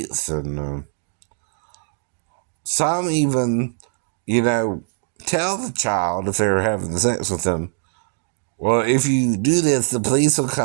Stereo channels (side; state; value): left; silent; 57 dB below the other